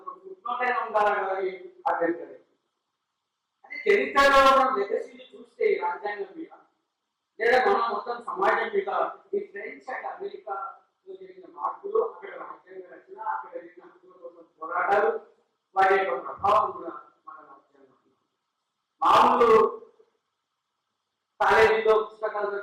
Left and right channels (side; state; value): both; identical; correlation 1.00